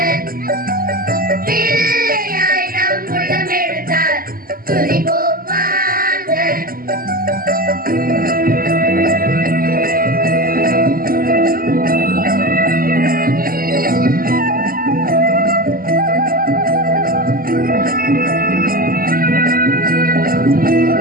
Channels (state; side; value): late; left; 0.42 ms